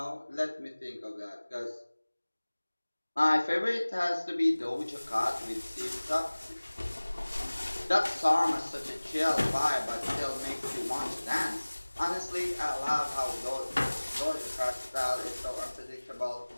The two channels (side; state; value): both; inverted; correlation -1.00